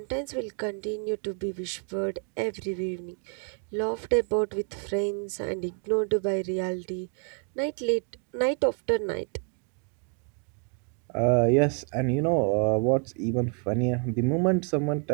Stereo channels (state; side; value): quieter; left; 39.5 dB